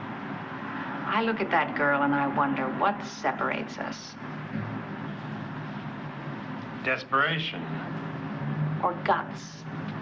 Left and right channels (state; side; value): identical; both; correlation 1.00